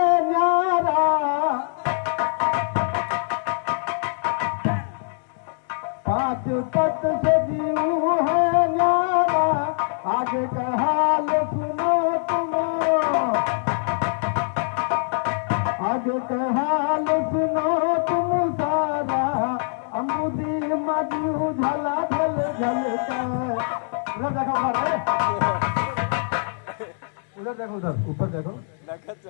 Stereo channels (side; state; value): right; silent; digital silence